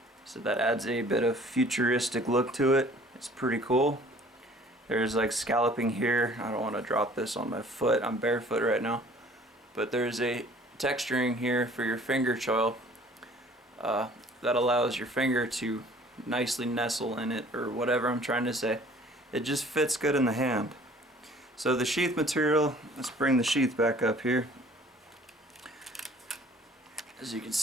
so that adds a bit of futuristic look to it. It's pretty cool. There's like scalloping here. I don't want to drop this on my foot, I'm barefoot right now, but there's a texturing here for your finger choil that allows your finger to nicely nestle in it, or whatever I'm trying to say. It just fits good in the hand. So the sheath material, let's bring the sheath back up here. As you can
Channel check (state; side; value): normal; both; correlation 0.52